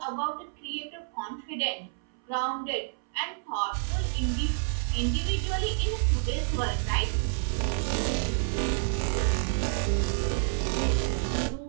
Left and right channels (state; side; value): silent; left; 59 dB below the other